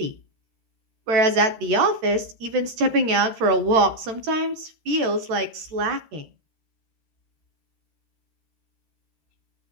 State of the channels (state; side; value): late; left; 13 ms